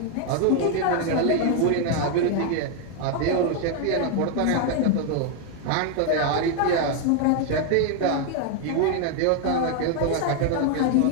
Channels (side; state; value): both; different; correlation 0.01